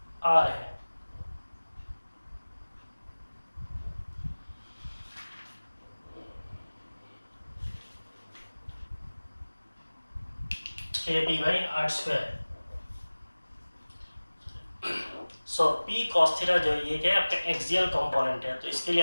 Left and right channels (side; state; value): both; inverted; correlation -1.00